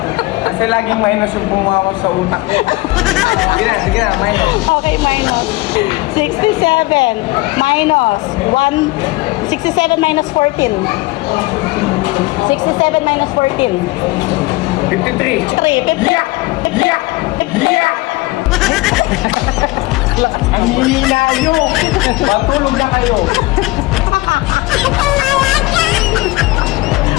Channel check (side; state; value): right; quieter; 21.7 dB